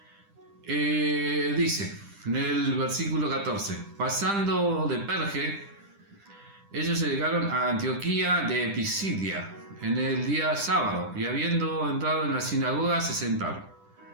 dice en el versículo 14: pasando de Perge, ellos llegaron a Antioquía de Pisidia en el día sábado, y habiendo entrado en la sinagoga se sentaron.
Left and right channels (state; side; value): late; left; 10 ms